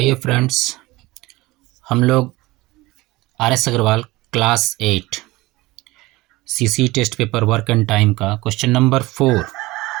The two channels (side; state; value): left; quieter; 20.3 dB